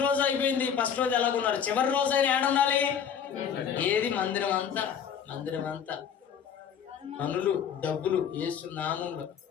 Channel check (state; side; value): quieter; right; 7.8 dB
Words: రోజు అయిపోయింది, ఫస్ట్ రోజు ఎలాగున్నారు, చివరి రోజైనా ఏడుండాలి? ఏది? మందిరం అంతా పనులు, డబ్బులు, యేసు నామంలో